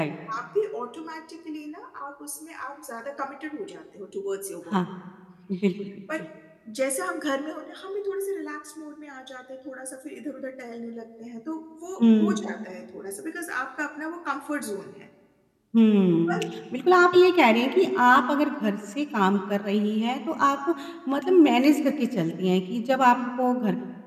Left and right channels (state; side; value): identical; both; correlation 1.00